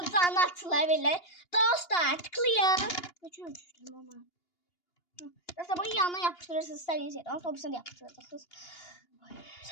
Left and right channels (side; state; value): right; late; 2.8 ms